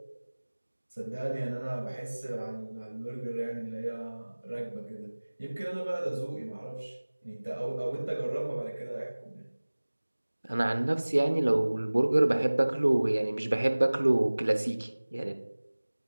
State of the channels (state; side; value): inverted; both; correlation -1.00